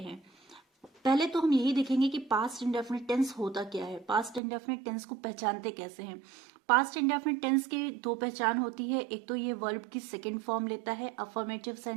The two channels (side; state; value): left; drops out; at 4.4 s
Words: हैं। पहले तो हम यही देखेंगे कि पास्ट इंडेफिनिट टेंस होता क्या है, पास्ट इंडेफिनिट टेंस को पहचानते कैसे हैं। पास्ट इंडेफिनिट टेंस की दो पहचान होती है, एक तो ये वर्ब की सेकंड फॉर्म लेता है अफर्मेटिव